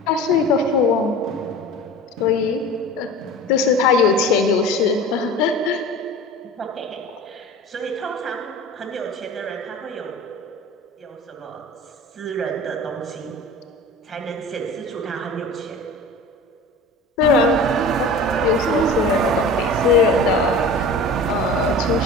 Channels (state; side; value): normal; both; correlation 0.37